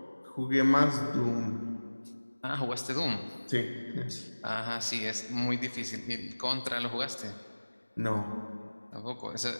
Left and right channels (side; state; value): both; inverted; correlation -1.00